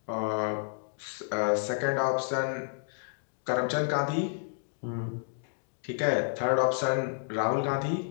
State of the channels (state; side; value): silent; right; digital silence